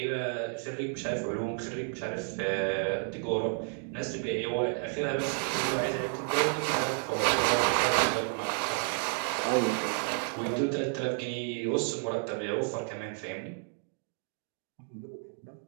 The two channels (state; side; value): silent; left; 57 dB below the other